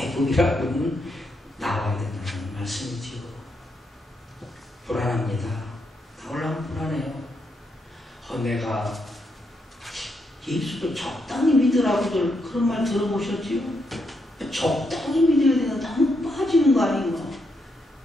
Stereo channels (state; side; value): normal; both; correlation 0.80